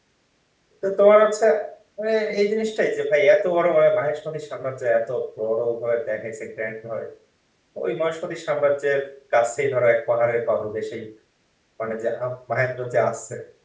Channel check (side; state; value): both; identical; correlation 1.00